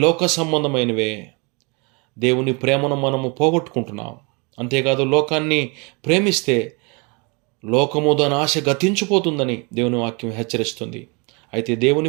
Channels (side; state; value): left; quieter; 30.8 dB